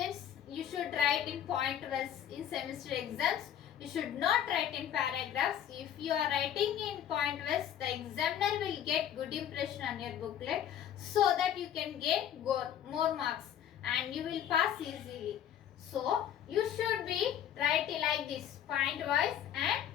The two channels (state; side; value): quieter; right; 10.1 dB